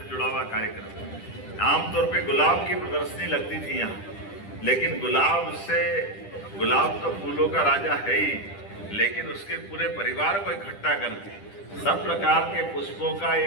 जुड़ा हुआ कार्यक्रम है। आमतौर पे गुलाब की प्रदर्शनी लगती थी यहाँ, लेकिन गुलाब तो फूलों का राजा है ही, लेकिन उसके पूरे परिवार को इकट्ठा करके सब प्रकार के पुष्पों का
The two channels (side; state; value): right; late; 10 ms